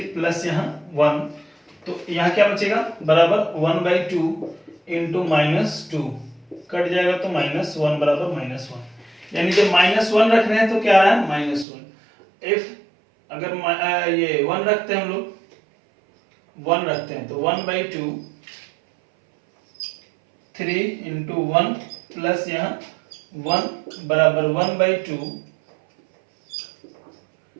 प्लस यहाँ 1, तो यहाँ क्या बचेगा बराबर 1/2 इंटू -2 कट जाएगा तो -1 बराबर -1, यानी जब -1 रख रहे हैं तो क्या आ रहा है -1। इफ अगर ये 1 रखते हैं हम लोग, 1 रखते हैं तो 1/2 3 इंटू 1 प्लस यहाँ 1 बराबर 1/2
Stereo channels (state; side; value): drops out; left; at 11.7 s